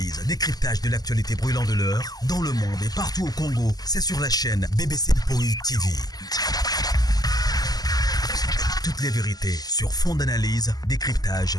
décryptage de l'actualité brûlante de l'heure, dans le monde et partout au Congo. C'est sur la chaîne BBC Mpoï TV. Toutes les vérités sur fond d'analyse,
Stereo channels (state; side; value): late; right; 0.19 ms